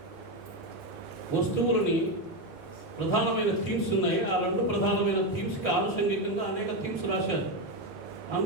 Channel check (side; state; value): both; normal; correlation 0.10